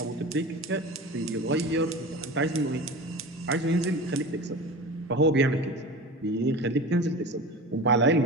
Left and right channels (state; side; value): normal; both; correlation 0.32